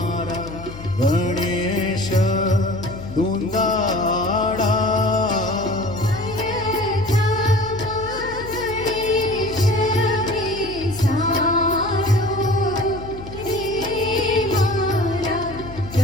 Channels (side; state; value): left; noise; hum, 13 dB below the sound